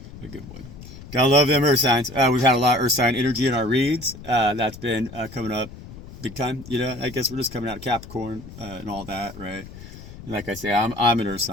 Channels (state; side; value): noise; left; rumble, 15 dB below the sound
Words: A good boy. Gotta love them earth signs. We've had a lot of earth sign energy in our reads. That's been coming up big time. I guess we're just coming out of Capricorn and all that, right? And like I say, I'm an earth